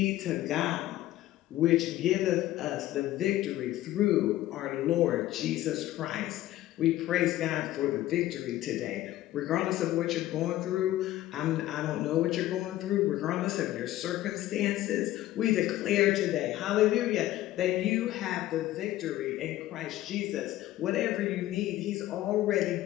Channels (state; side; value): quieter; right; 14.8 dB